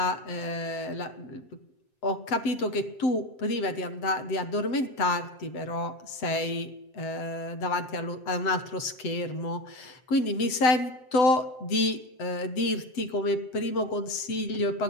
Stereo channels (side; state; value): right; late; 7.7 ms